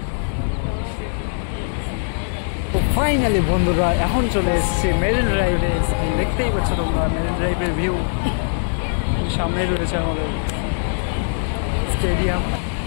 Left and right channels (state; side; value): silent; right; 65 dB below the other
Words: তো ফাইনালি বন্ধুরা এখন চলে এসেছি মেরিন ড্রাইভে। দেখতেই পাচ্ছ তোমরা মেরিন ড্রাইভের ভিউ। সামনেই রয়েছে আমাদের স্টেডিয়াম।